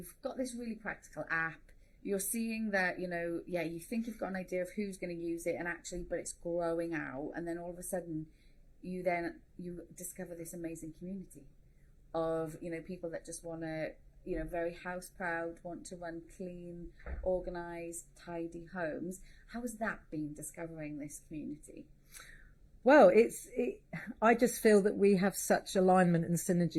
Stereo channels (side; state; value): both; identical; correlation 1.00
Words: got this really practical app. You're seeing that, you know, you think you've got an idea of who's going to use it, and actually, but it's growing out. And then all of a sudden, you discover this amazing community of, you know, people that just want to, you know, very house proud, want to run clean, organised, tidy homes. How has that been, discovering this community? Well, I just feel that we have such alignment and